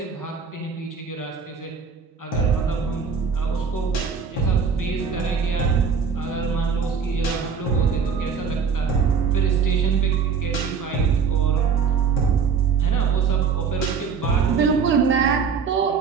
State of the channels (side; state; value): left; quieter; 6.0 dB